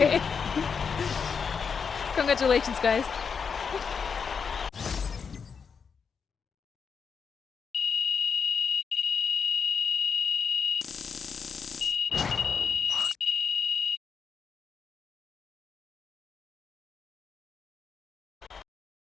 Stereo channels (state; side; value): quieter; right; 6.1 dB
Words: you. Congratulations, guys.